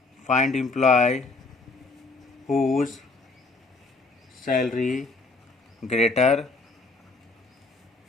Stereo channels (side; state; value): right; quieter; 3.6 dB